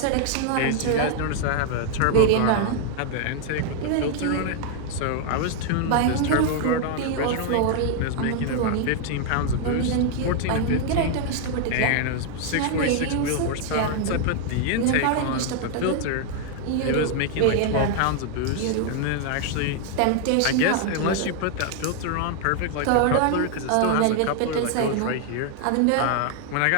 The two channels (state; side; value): different; both; correlation 0.00